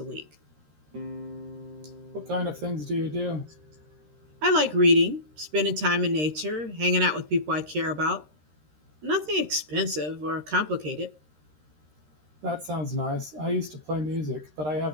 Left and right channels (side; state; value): left; late; 13 ms